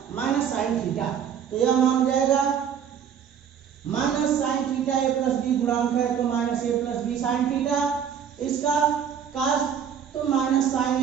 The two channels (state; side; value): quieter; left; 8.2 dB